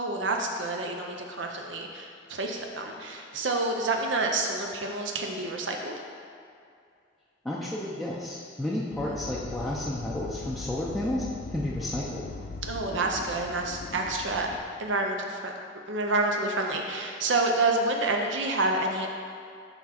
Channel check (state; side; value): normal; both; correlation 0.06